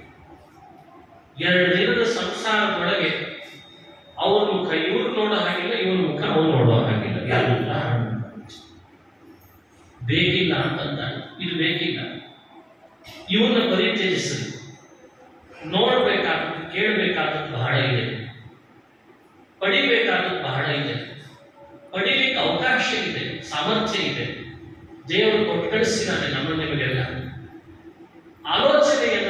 2 ದಿನದ ಸಂಸಾರದೊಳಗೆ ಅವ್ರ ಮುಖ ಇವ್ರು ನೋಡೋ ಹಾಗಿಲ್ಲ, ಇವ್ರ ಮುಖ ಅವ್ರು ನೋಡೋ ಹಾಗಿಲ್ಲ. ಎಲ್ಲ ಬೇಕಿಲ್ಲ ಅಂತಂದ, ಇದು ಬೇಕಿಲ್ಲ, ಇವನ್ನ ಪರಿತ್ಯಜಿಸಲಿ. ನೋಡ್ಬೇಕಾದದ್ದು, ಕೇಳಬೇಕಾದದ್ದು ಬಹಳ ಇದೆ, ಪಡಿಬೇಕಾದದ್ದು ಬಹಳ ಇದೆ, ಪಡಿಲಿಕ್ಕೆ ಅವಕಾಶ ಇದೆ, ಸಾಮರ್ಥ್ಯ ಇದೆ. ದೇವರು ಕೊಟ್ಟು ಕಳಿಸಿದ್ದಾನೆ ನಮ್ಮ ನಿಮಗೆಲ್ಲ.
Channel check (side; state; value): both; identical; correlation 1.00